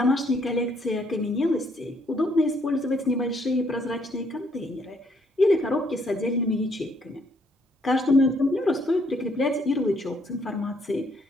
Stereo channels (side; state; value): both; normal; correlation 0.69